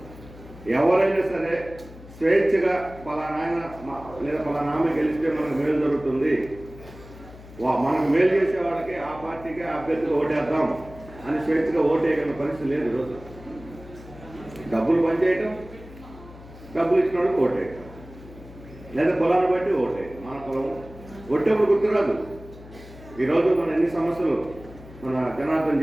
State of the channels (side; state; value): left; noise; hum, 18 dB below the sound